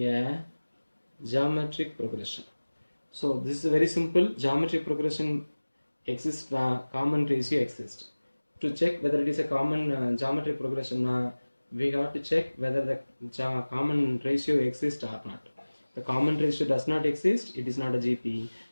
geometric progression. So this is very simple. Geometric progression exists, common ratio exists. To check whether it is a common geometric progression, we have to check whether the common ratio exists or not. The common ratio does not exist, it is not a GP.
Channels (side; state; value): both; inverted; correlation -1.00